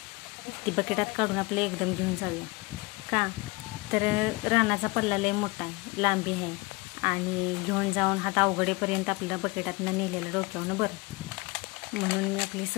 ती बकेटात काढून आपलं एकदम घेऊन जाऊया. का तर रानाचा पल्ला लय मोठा आहे, लांबी आहे आणि घेऊन जाऊन हात अवघडेपर्यंत आपल्याला बकेटातनं नेलेलं डोक्यावनं बरं. म्हणून मी आपली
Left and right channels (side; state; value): right; quieter; 25.3 dB